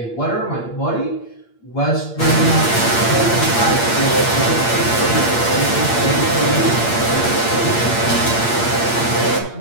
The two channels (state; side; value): late; right; 8.6 ms